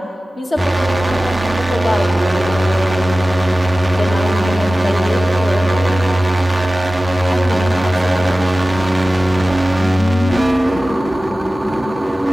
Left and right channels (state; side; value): normal; both; correlation 0.96